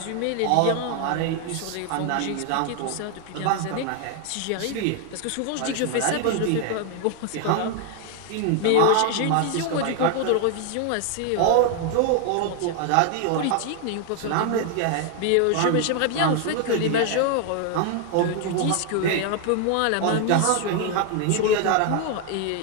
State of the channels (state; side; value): different; both; correlation 0.01